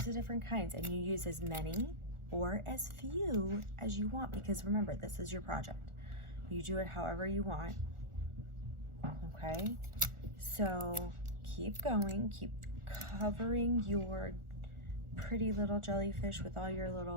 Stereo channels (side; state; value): left; late; 1.4 ms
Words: of different kinds, and you use as many or as few as you want, because remember, this is your project. You do it however you want, okay? So keep going, keep covering your pretty little jellyfish with all your